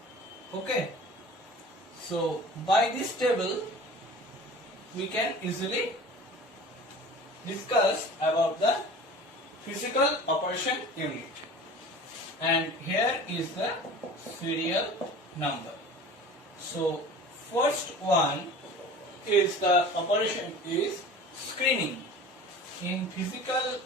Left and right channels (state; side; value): normal; both; correlation 0.41